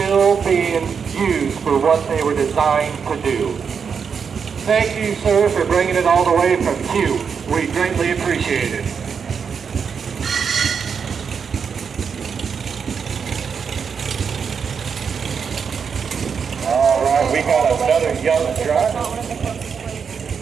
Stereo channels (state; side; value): quieter; left; 6.4 dB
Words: being used for what they were designed to do. Thank you, sir, for bringing it all the way from Q. We greatly appreciate it. All right, we got another young driver.